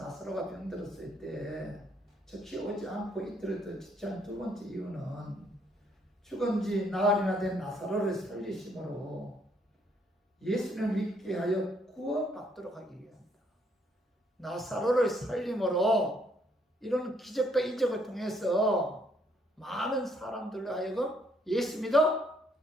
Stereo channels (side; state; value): both; normal; correlation 0.69